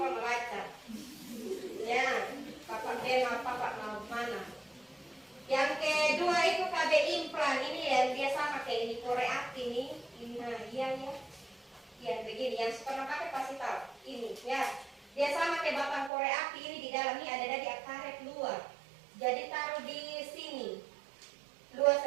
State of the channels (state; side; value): drops out; left; at 16.1 s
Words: membaca. Ya, papa tema, papa mau mana. Yang kedua itu KB implan, ini yang dia sama kayak ini Korea ini, nah iya ya. Ya begini, yang pernah pakai pasti tahu. Ini ya, dia sama kayak batang Korea api ini di dalam ini ada dari karet luar. Jadi taruh di sini. Luas